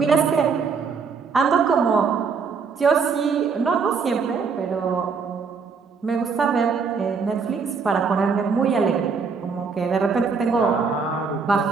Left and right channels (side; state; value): left; quieter; 5.4 dB